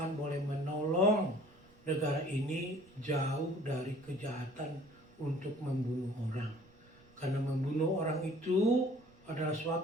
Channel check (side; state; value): right; noise; rumble, 28 dB below the sound